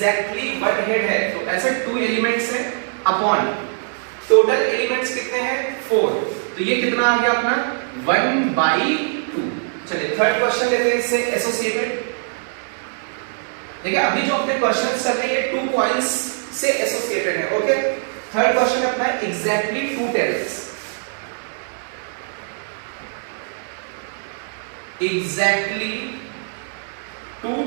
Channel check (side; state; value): left; silent; digital silence